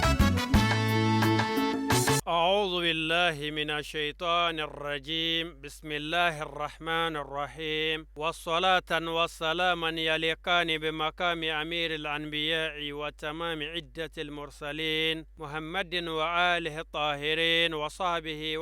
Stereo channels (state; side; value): identical; both; correlation 1.00